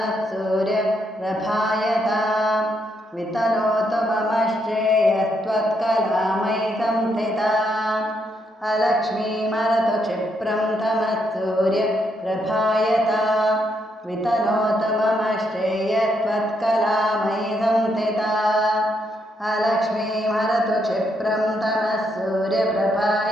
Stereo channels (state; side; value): normal; both; correlation 0.77